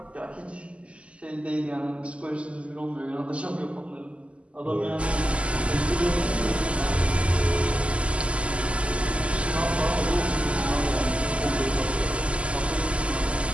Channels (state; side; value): late; left; 0.058 ms